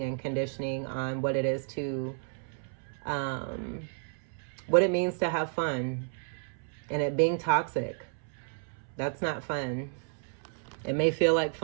and conditioning on what it is to, what it means to have fun, and it being toxic. That's not fun. It may feel like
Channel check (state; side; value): silent; left; 57 dB below the other